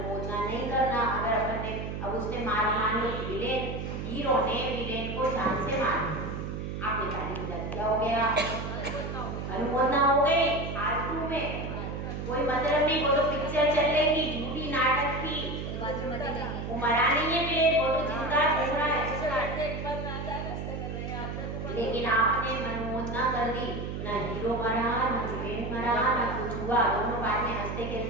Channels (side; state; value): right; noise; hum, 5 dB below the sound